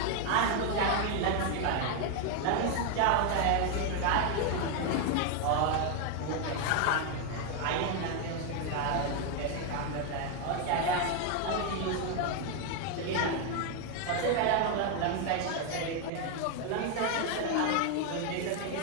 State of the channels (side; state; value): both; different; correlation 0.01